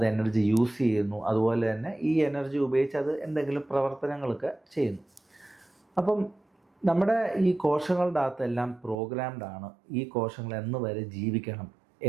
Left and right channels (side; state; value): left; drops out; at 9.0 s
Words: എനർജി യൂസ് ചെയ്യുന്നു. അതുപോലെ തന്നെ ഈ എനർജി ഉപയോഗിച്ച് അത് എന്തെങ്കിലും പ്രവർത്തനങ്ങളൊക്കെ ചെയ്യുന്നു. അപ്പം നമ്മുടെ ഈ കോശങ്ങളുടെ അകത്തെല്ലാം പ്രോഗ്രാംഡ് ആണ്. ഈ കോശങ്ങൾ എന്ന് വരെ ജീവിക്കണം,